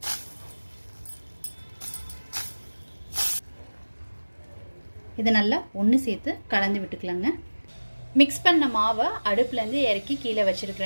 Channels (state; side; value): inverted; both; correlation -1.00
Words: இதை நல்லா ஒன்று சேர்த்து கலந்து விட்டுக்கலாங்க. மிக்ஸ் பண்ண மாவை அடுப்புலேருந்து இறக்கி கீழே